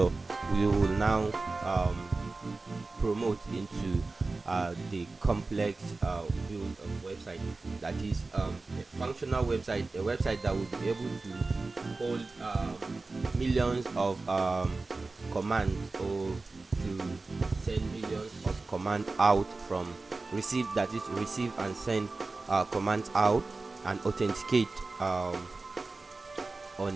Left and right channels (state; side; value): quieter; left; 3.6 dB